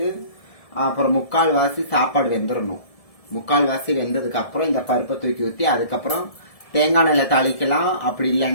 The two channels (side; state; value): right; late; 1.7 ms